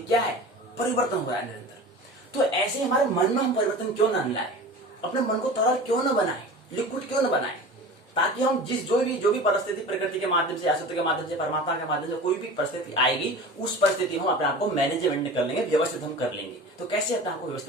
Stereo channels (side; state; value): both; normal; correlation 0.36